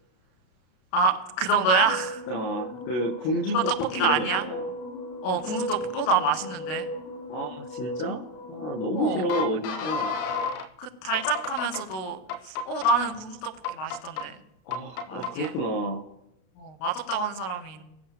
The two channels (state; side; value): late; right; 33 ms